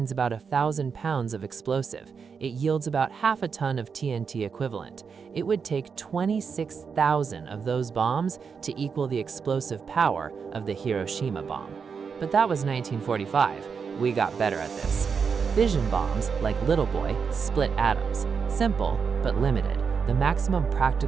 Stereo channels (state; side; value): quieter; left; 6.0 dB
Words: about 1,000 pounds of explosive. It yields about half a ton of TNT equivalent. It would take 26,000 of those bombs to equal the explosive power of the Hiroshima bomb. But that was 1945. We got better at this. Fission bombs, like Little Boy, split atoms. Simple, but limited. The maximum